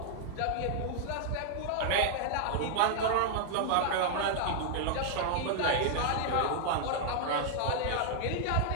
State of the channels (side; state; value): both; different; correlation -0.01